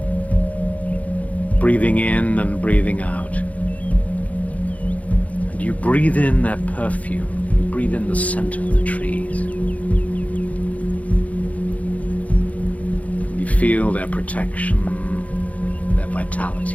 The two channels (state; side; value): late; right; 0.069 ms